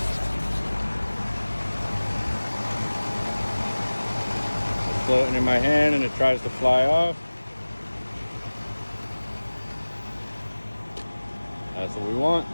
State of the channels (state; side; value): inverted; both; correlation -1.00